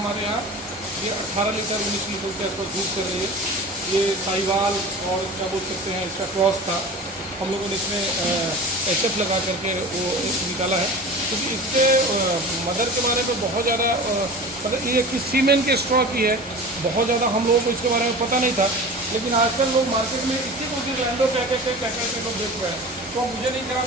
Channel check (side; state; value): both; normal; correlation 0.35